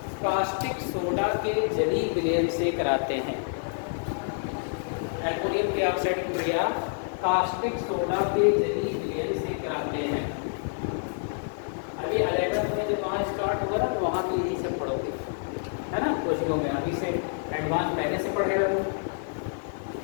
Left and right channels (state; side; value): silent; right; digital silence